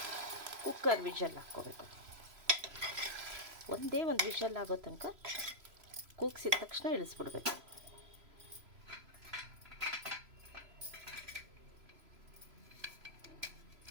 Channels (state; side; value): late; left; 3.0 ms